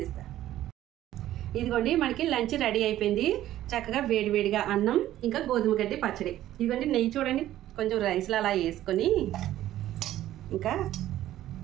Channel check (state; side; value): quieter; left; 13.4 dB